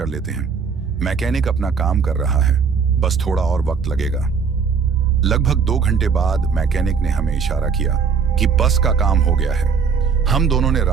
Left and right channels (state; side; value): quieter; left; 5.9 dB